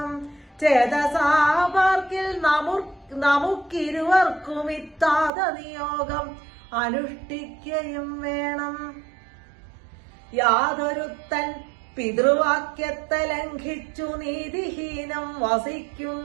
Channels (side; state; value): left; drops out; at 5.3 s